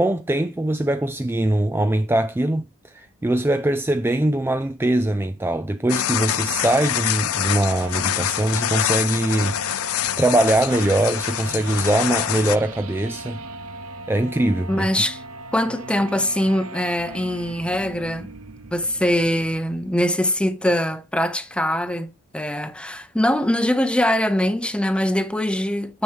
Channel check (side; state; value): both; normal; correlation 0.73